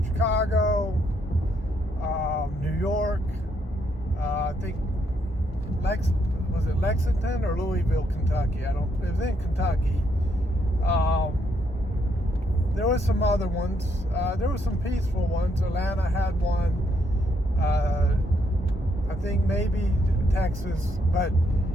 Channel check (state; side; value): normal; both; correlation 0.75